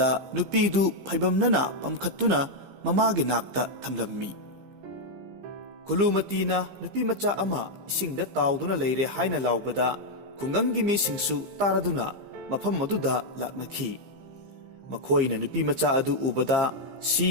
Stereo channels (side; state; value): left; late; 15 ms